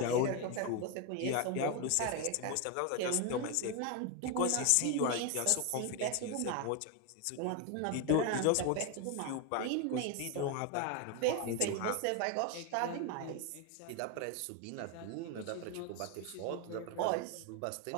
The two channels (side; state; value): both; different; correlation 0.01